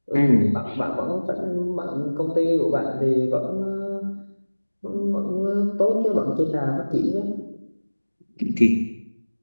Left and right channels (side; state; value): both; inverted; correlation -1.00